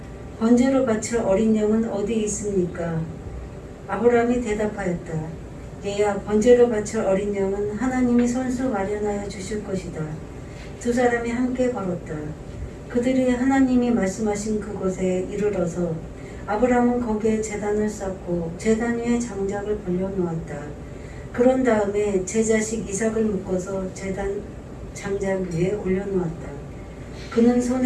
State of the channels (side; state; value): both; identical; correlation 1.00